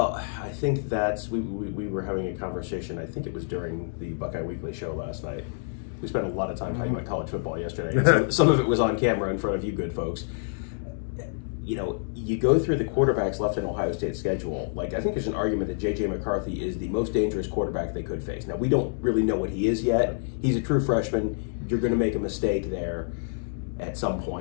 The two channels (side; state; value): right; silent; digital silence